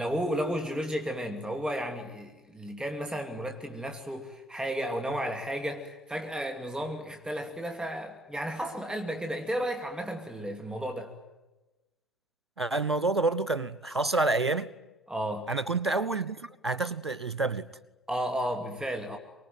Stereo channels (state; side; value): normal; both; correlation 0.59